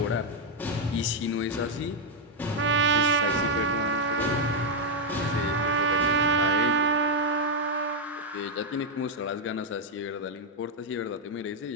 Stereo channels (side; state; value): both; normal; correlation 0.01